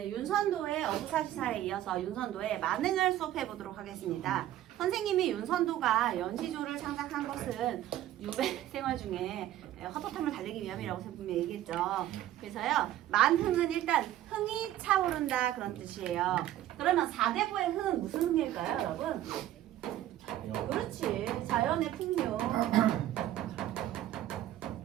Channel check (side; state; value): left; quieter; 13.1 dB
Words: 윤선도의 어부사시사에 이어서 윤선도의 만능을 수업해 보도록 하겠습니다. 선생님이 윤선도가 연시조를 창작한 것은 유배 생활 중에 헛헛함을 달래기 위함이라고 분명히 얘기했죠. 그래서요, 만흥은 일단 흥이 차오른다 그런 뜻이에요. 그러면 4대부의 흥은 무슨 흥일까요, 여러분? 그렇지, 자연의 풍요.